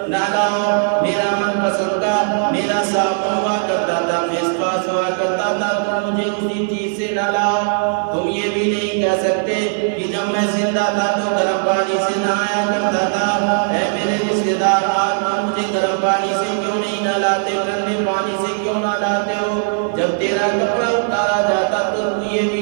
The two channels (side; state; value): left; silent; 67 dB below the other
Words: نہلاؤ، میرا من پسند کا میرا صابن ہوا کرتا تھا، فیس واش ہوا کرتا تھا، تم مجھے اسی چیز سے نہلاؤ۔ تم یہ بھی نہیں کہہ سکتے کہ جب میں زندہ تھا تو گرم پانی سے نہایا کرتا تھا، اے میرے رشتے دار آج تم مجھے گرم پانی سے کیوں نہیں نہلاتے، ٹھنڈے پانی سے کیوں نہلاتے ہو؟ جب تیرا کپڑا اتارا جاتا تو تو یہ بھی